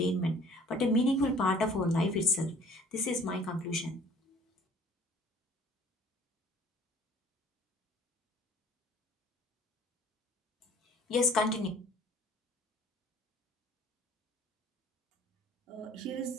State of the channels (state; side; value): normal; both; correlation 0.54